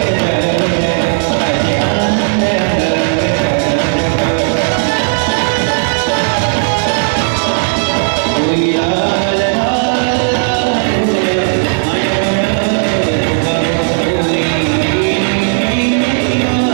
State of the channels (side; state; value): left; silent; digital silence